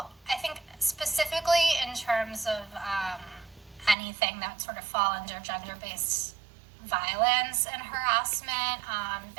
I think specifically in terms of anything that sort of fall under gender-based violence and harassment,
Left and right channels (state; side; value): drops out; left; at 4.0 s